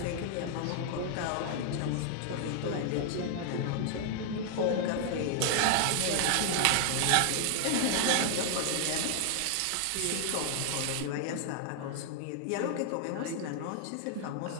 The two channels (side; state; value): both; different; correlation 0.00